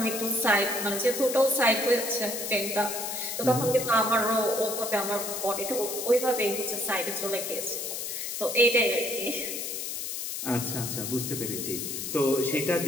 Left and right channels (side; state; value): left; noise; hiss, 4 dB below the sound